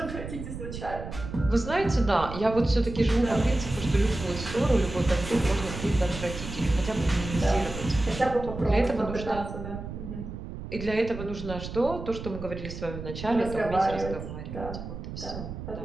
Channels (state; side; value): noise; right; rumble, 9 dB below the sound